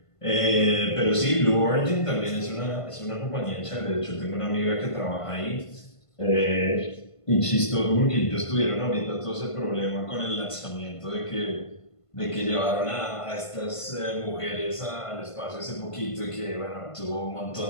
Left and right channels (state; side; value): late; right; 1.5 ms